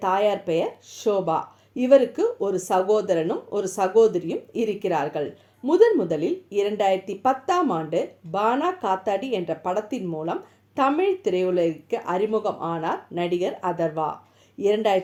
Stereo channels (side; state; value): both; identical; correlation 1.00